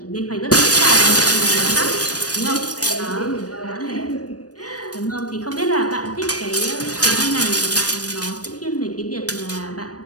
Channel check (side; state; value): right; late; 0.68 ms